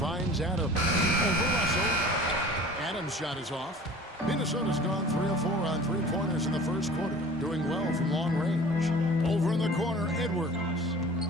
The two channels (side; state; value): both; normal; correlation 0.44